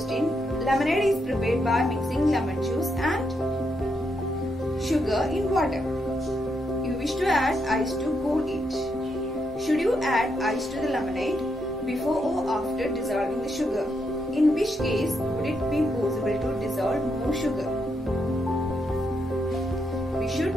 Lemonade is prepared by mixing lemon juice and sugar in water. You wish to add ice to cool it. Should you add ice to the lemonade before or after dissolving the sugar? In which case would it be possible to dissolve more sugar? We should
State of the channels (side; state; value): both; normal; correlation 0.80